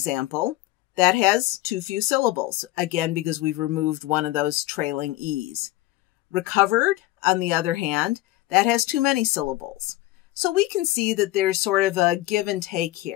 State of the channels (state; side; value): quieter; right; 17.2 dB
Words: that has too few syllables, again, because we've removed one of those trailing E's. Recovered, on the other hand, that has too many syllables. So we can see that there's sort of a give and take